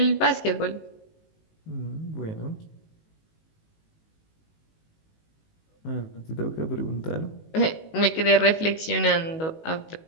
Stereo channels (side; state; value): right; late; 19 ms